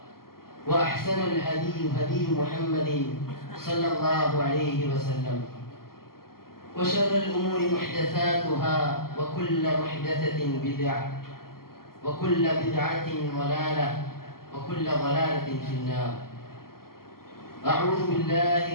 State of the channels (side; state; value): right; late; 0.92 ms